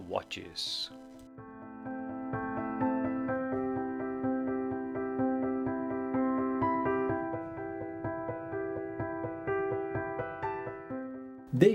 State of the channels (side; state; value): both; identical; correlation 1.00